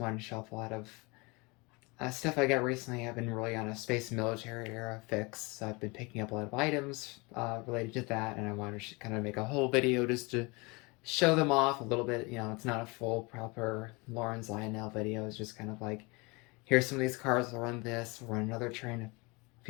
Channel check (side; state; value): right; quieter; 26.9 dB